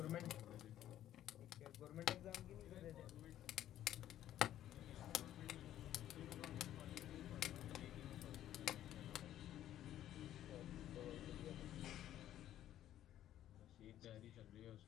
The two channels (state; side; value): quieter; right; 12.1 dB